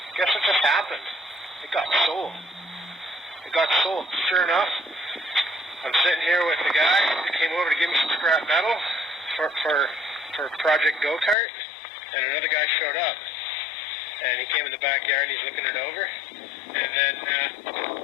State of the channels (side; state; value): right; drops out; at 11.4 s